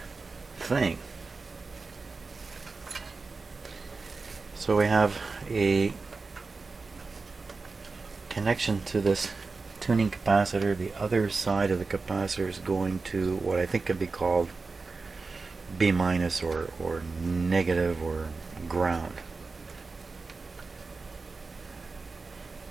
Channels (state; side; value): quieter; left; 4.1 dB